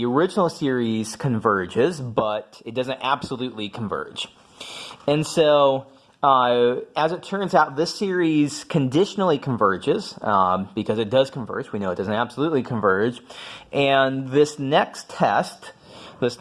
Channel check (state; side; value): identical; both; correlation 1.00